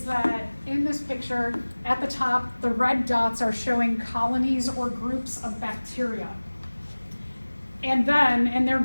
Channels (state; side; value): inverted; both; correlation -1.00